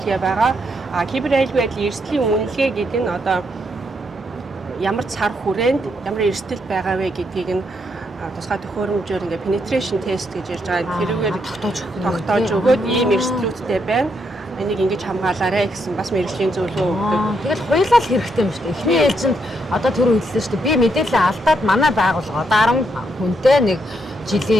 байгаа. Кибер аюулгүй байдлын эрсдлийн үнэлгээ гэдэг нь одоо ямар цар хүрээнд ямар эрсдэл байгаа вэ гэдгийг нь тусгай төхөөрөмжөөр ингээ penetration test гэж ярьж байгаа. Тэрүүгээр тогтоож өгөөд ийм эрсдлүүдтэй байна. Энийг ингэж хамгаалаарай гэсэн бас мэргэжлийн зөвлөгөө өгдөг. Тэгэл хуйлал хэрэгтэй юм шүү дээ. Эхний ээлжинд одоо түр хэлсэн шүү дээ. Би мэдээлэл алдаад манай байгууллага 10 хүнтэй нэг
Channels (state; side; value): normal; both; correlation 0.77